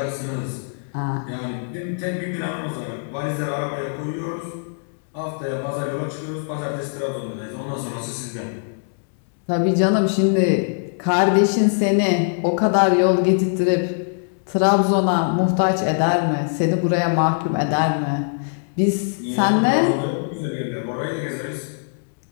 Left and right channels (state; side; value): silent; right; digital silence